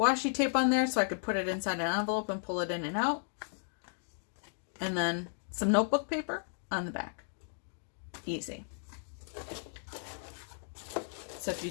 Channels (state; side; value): silent; right; digital silence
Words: tape on there so I could put it inside an envelope and pull it in and out. And then some notebook paper on the back. Easy. So if you